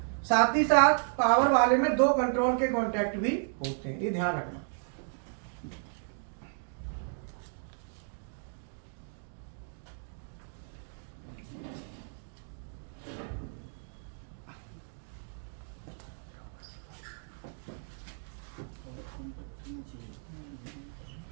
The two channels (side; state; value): left; silent; 56 dB below the other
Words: साथ ही साथ पावर वाले में 2 कंट्रोल के कॉन्टैक्ट भी होते हैं, ये ध्यान रखना।